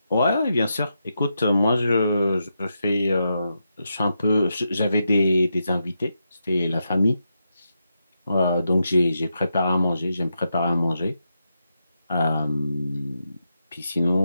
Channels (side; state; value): both; inverted; correlation -0.85